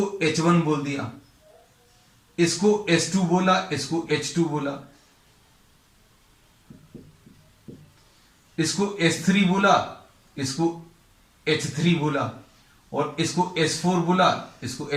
H1 बोल दिया, इसको S2 बोला, इसको H2 बोला, इसको S3 बोला, इसको H3 बोला, और इसको S4 बोला, इसको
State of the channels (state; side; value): identical; both; correlation 1.00